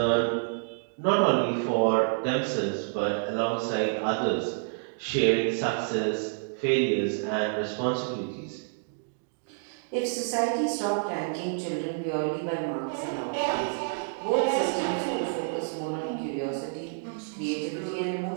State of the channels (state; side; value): silent; left; digital silence